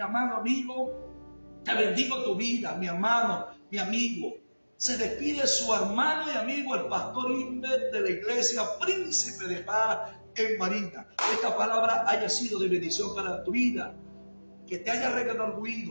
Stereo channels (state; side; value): inverted; both; correlation -1.00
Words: amado amigo, te bendigo tu vida, mi hermano, mi amigo. Se despide su hermano y amigo, el pastor Inver de la iglesia Príncipe de Paz en Barinas. Esta palabra haya sido de bendición para tu vida, que te haya